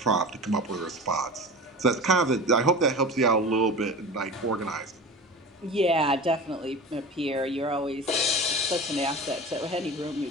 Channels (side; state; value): both; normal; correlation 0.33